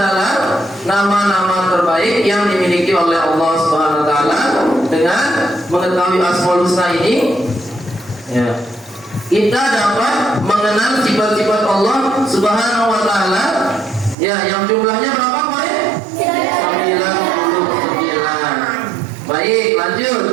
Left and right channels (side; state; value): left; drops out; at 14.2 s